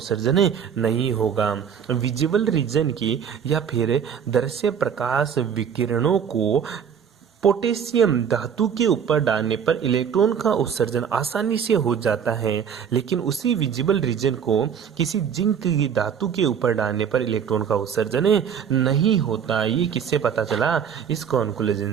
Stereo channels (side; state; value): left; quieter; 7.7 dB